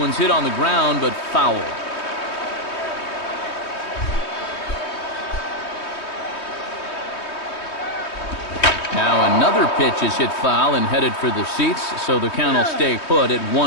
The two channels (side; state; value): right; late; 3.2 ms